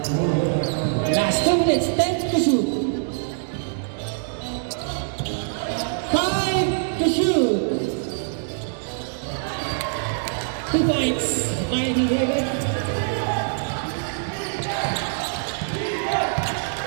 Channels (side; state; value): left; silent; digital silence